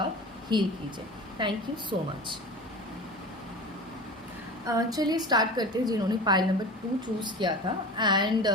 हील कीजिए। Thank you so much. चलिए स्टार्ट करते हैं जिन्होंने पाइल नंबर 2 चूज़ किया था, एंड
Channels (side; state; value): both; normal; correlation 0.33